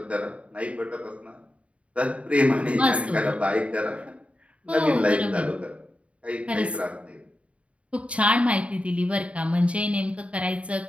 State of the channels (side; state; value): left; late; 0.063 ms